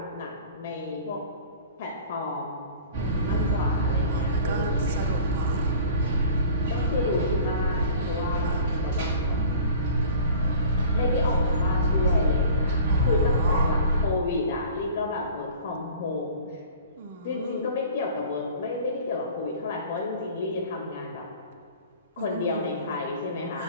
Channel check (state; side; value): inverted; both; correlation -0.44